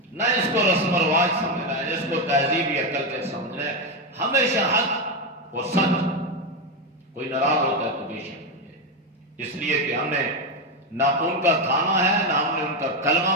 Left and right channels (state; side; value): normal; both; correlation 0.09